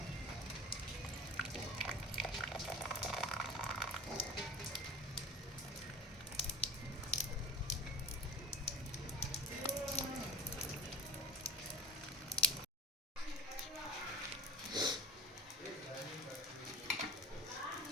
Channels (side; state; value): both; normal; correlation 0.35